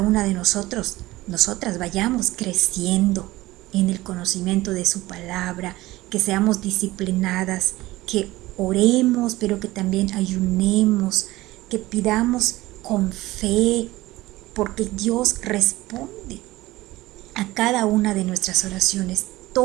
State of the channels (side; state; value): left; quieter; 18.2 dB